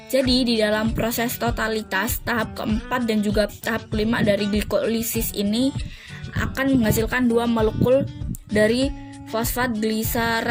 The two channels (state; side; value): identical; both; correlation 1.00